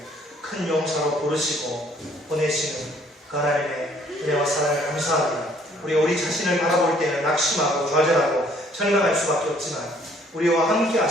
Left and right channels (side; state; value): both; normal; correlation 0.61